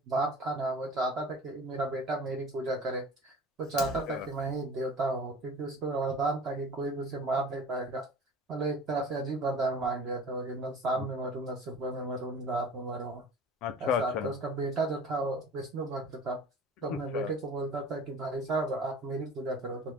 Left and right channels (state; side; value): normal; both; correlation 0.42